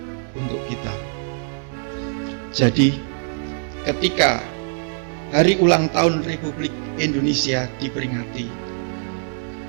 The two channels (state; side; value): silent; left; digital silence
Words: untuk kita. Jadi, ketika hari ulang tahun Republik Indonesia diperingati,